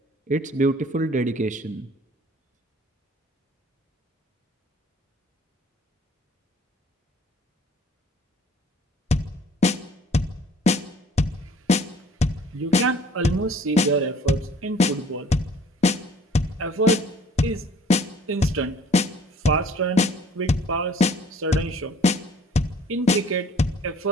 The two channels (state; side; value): normal; both; correlation 0.54